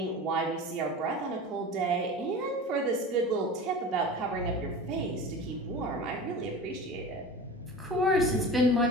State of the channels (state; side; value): normal; both; correlation 0.33